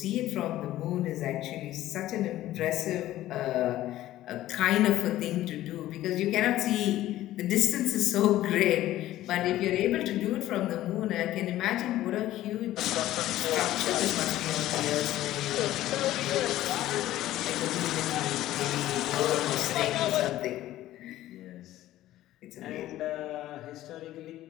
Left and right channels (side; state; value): right; quieter; 14.6 dB